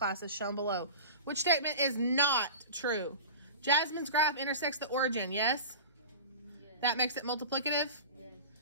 as shown below. Which statement is not true? Jasmine's graph intersects the origin, yes? That makes it multiplicative?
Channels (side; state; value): both; inverted; correlation -0.33